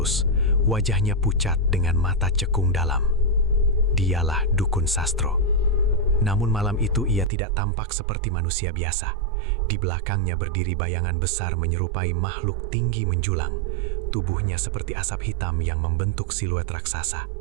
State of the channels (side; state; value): left; drops out; at 7.3 s